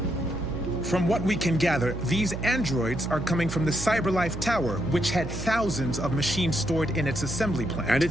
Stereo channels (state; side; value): noise; right; hum, 8 dB below the sound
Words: From what we can gather, these androids are coming from the CyberLife Tower, which had thousands of machines stored in its assembly plant. And it